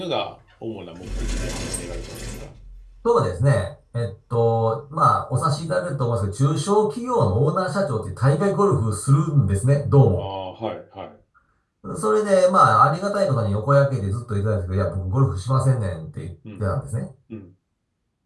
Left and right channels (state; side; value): identical; both; correlation 1.00